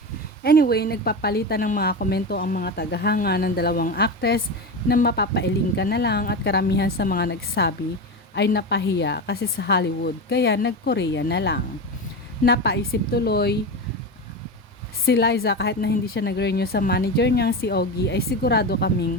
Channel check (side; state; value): both; normal; correlation 0.20